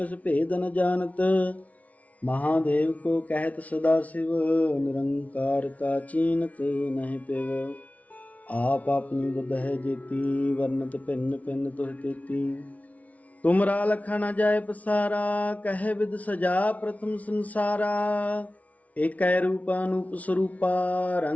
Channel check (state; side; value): late; right; 0.069 ms